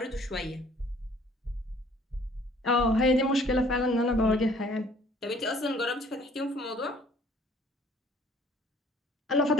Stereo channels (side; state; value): both; normal; correlation 0.55